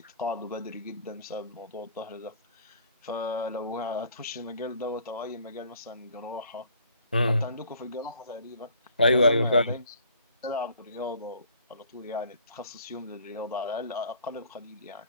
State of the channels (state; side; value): inverted; both; correlation -0.56